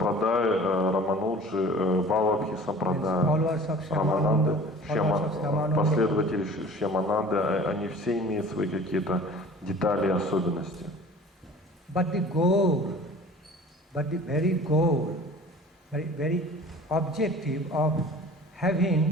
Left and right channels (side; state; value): both; normal; correlation 0.44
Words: Рамануджи, Валабхи сампрадая, Рамананды, последователи Шьямананды, они все имеют свои какие-то детали и особенности. But the very objective of